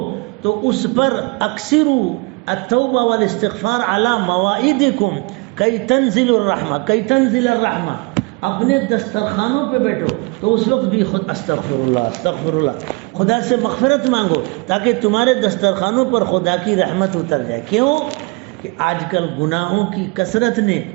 تو اس پر اکثروا التوبہ والاستغفار علی مواعیدکم کی تنزل الرحمہ، اپنے دسترخوانوں پہ بیٹھو تو اس وقت بھی خود استغفر اللہ خدا سے مغفرت مانگو تاکہ تمہارے دسترخوانوں پر خدا کی رحمت اتر جائے. کیوں کہ آج کل گناہوں کی کثرت نے،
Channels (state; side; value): quieter; left; 28.6 dB